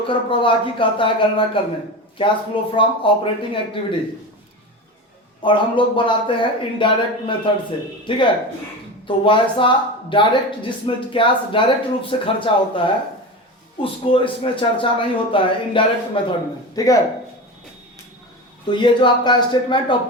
प्रवाह की कहता है गणना करने, cash flow from operating activities. और हम लोग बनाते हैं इनडायरेक्ट मेथड से, ठीक है। तो वैसा डायरेक्ट जिसमें कैश डायरेक्ट रूप से खर्चा होता है उसको इसमें चर्चा नहीं होता है इनडायरेक्ट मेथड में, ठीक है। तो ये जो आपका स्टेटमेंट ऑफ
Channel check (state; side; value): normal; both; correlation 0.26